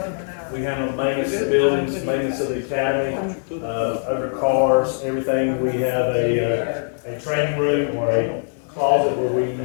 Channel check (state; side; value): silent; right; digital silence